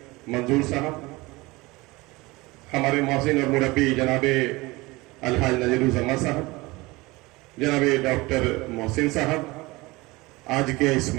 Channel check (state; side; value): quieter; left; 22.2 dB